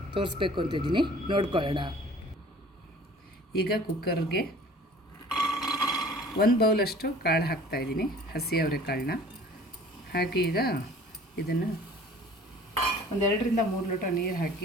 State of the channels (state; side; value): normal; both; correlation 0.48